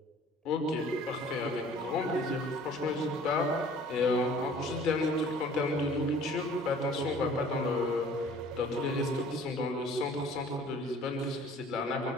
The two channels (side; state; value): both; normal; correlation 0.51